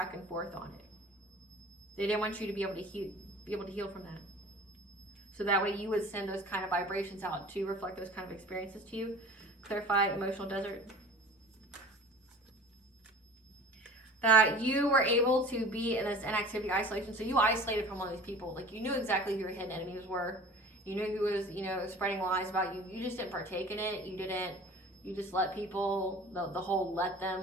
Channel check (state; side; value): normal; both; correlation 0.42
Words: and forth on it. They didn't want you to be able to heal from that. So that way you would send those kind of vibrations out to reflect those kind of experiences to you. Clarify emotional desert. That you were able to be in this inactivity, isolation. So you isolated from all these people. Like, you knew exactly who your hidden enemies were. You knew who was, spreading lies about you. You just didn't partake in it. You just let people, the whole let